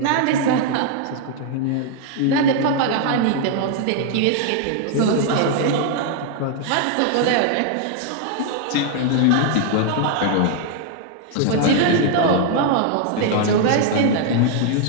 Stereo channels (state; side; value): different; both; correlation 0.00